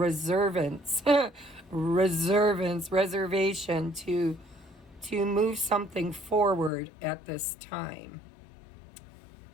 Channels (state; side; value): drops out; right; at 6.7 s